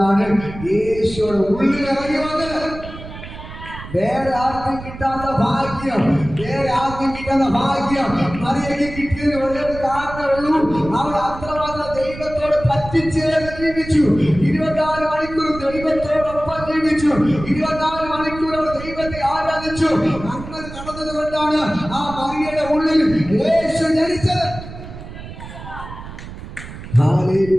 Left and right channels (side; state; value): right; noise; rumble, 12 dB below the sound